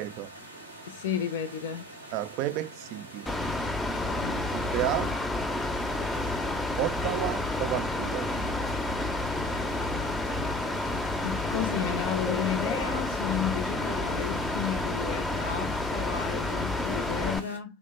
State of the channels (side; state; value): both; normal; correlation 0.50